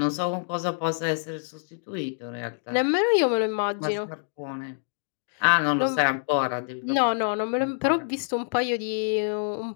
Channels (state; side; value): silent; right; digital silence